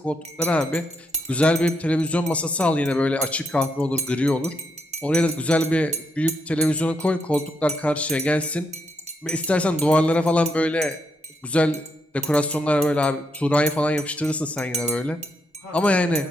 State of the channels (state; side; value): normal; both; correlation 0.79